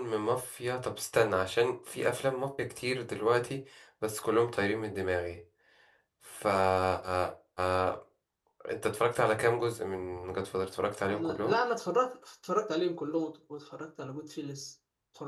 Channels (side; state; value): both; identical; correlation 1.00